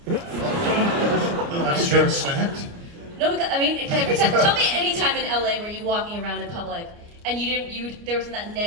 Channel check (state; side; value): late; left; 29 ms